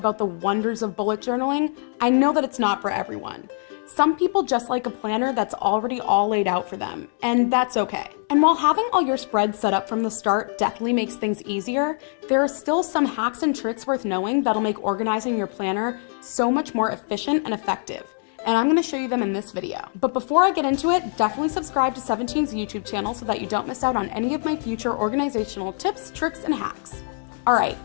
the wonders of bullet journaling, I know that it's not for everyone. Some people just like a planner that's already all laid out for them, and that's okay. And while having all your spreads set up from the start definitely makes things easier, there are still some hacks and tricks worth knowing that'll make organizing your planner so much more efficient and effective. And I'm gonna show you them in this video. But before I get into it, definitely subscribe to 17's YouTube channel so that you don't miss out on any of my future organizational tips, tricks, and hacks. All right,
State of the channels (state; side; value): silent; right; 60 dB below the other